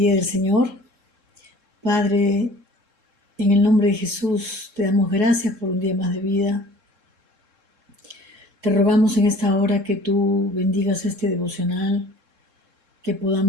del Señor. Padre, en el nombre de Jesús te damos gracias por un día más de vida. Te rogamos en esta hora que tú bendigas este devocional, que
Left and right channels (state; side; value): late; left; 3.7 ms